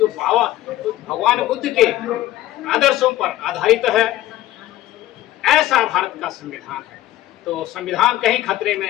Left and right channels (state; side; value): quieter; right; 15.0 dB